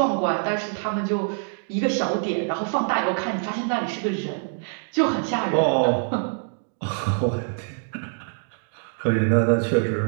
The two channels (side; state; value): left; silent; digital silence